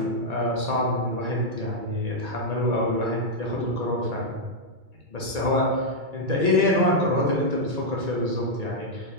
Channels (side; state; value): left; late; 2.3 ms